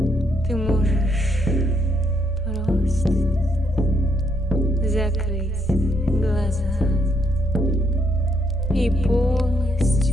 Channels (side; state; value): both; normal; correlation 0.74